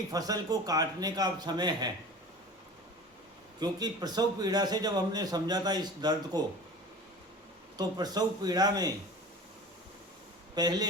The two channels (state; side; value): normal; both; correlation 0.38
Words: फसल को काटने का अब समय है। क्योंकि प्रसव पीड़ा से जब हमने समझा था इस दर्द को, तो प्रसव पीड़ा में